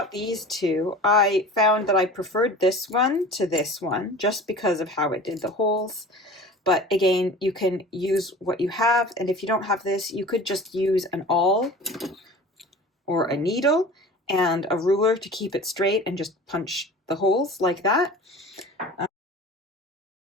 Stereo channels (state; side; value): normal; both; correlation 0.40